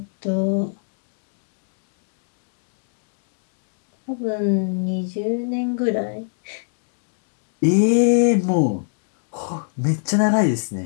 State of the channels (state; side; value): silent; right; digital silence